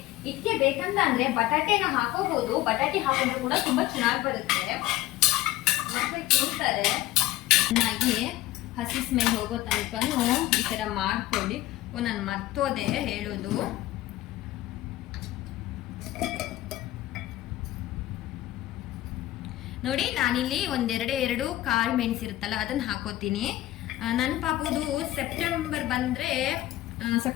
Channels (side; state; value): right; quieter; 15.9 dB